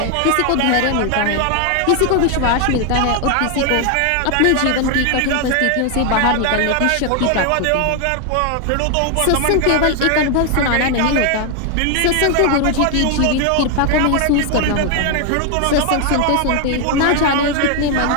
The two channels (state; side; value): different; both; correlation 0.01